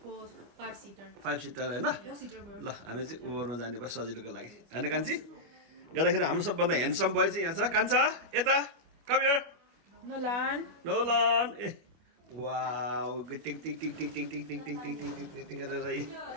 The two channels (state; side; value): late; left; 25 ms